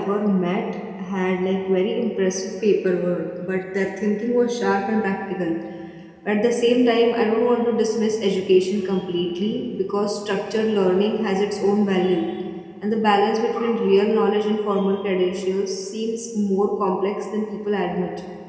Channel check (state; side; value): identical; both; correlation 1.00